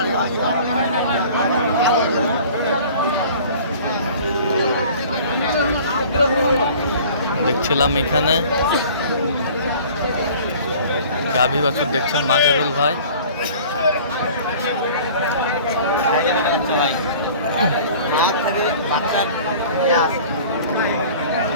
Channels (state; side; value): inverted; both; correlation -0.46